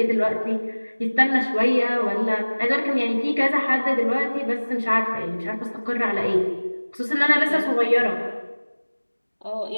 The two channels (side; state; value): both; inverted; correlation -1.00